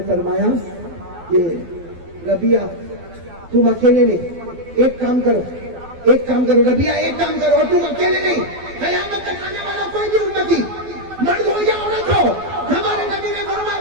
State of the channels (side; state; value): left; late; 12 ms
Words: فرمایا کہ ربیہ تم اکیلے نہیں, ایک کام کرو ربیہ, ایک کام کرو, اور تم اکیلے نہیں, قیامت تک آنے والا کوئی بھی امتی, مرد ہو یا عورت ہو, ہمارے نبی نے فرمایا